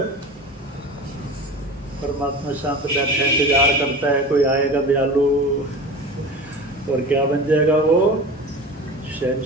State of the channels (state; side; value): normal; both; correlation 0.34